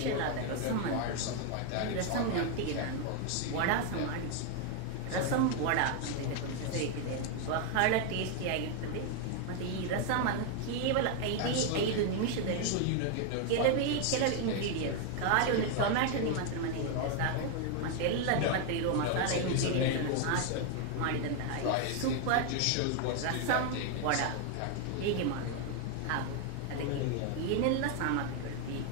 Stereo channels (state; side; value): different; both; correlation 0.01